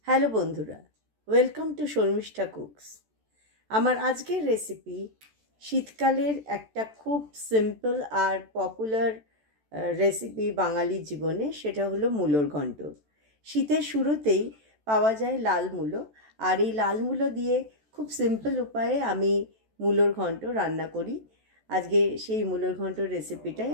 Hello বন্ধুরা, welcome to Sharmistha cooks. আমার আজকের রেসিপি শীতকালের একটা খুব সিম্পল আর পপুলার রেসিপি বাঙালির জীবনে, সেটা হলো মূলোর ঘন্ট। শীতের শুরুতেই পাওয়া যায় লাল মূলো, আর এই লাল মূলো দিয়ে খুব সিম্পল উপায়ে আমি মূলোর ঘন্ট রান্না করি। আজকে সেই মূলোর ঘন্টর রেসিপিটাই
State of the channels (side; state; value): left; late; 14 ms